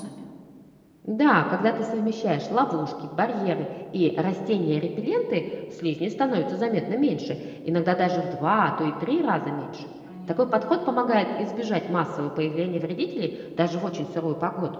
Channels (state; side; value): identical; both; correlation 1.00